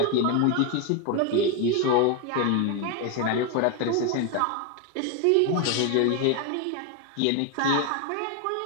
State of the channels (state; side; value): different; both; correlation 0.01